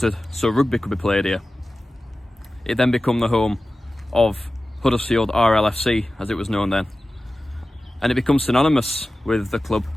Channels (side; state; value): both; normal; correlation 0.95